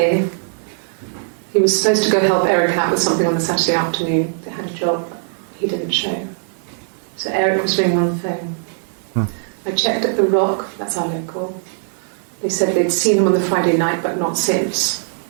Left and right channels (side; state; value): left; silent; 66 dB below the other